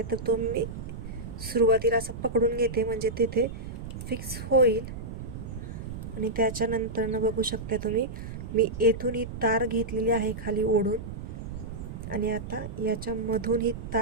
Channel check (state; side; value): noise; right; rumble, 8 dB below the sound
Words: तर तो मी सुरुवातीला असं पकडून घेते म्हणजे तिथे फिक्स होईल. आणि त्याच्यानंतरनं बघू शकता तुम्ही मी येथून ही तार घेतलेली आहे खाली ओढून आणि आता याच्यामधून ही